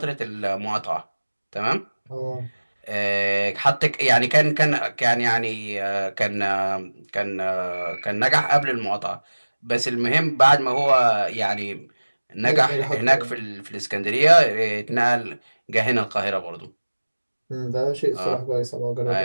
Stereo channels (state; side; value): inverted; both; correlation -1.00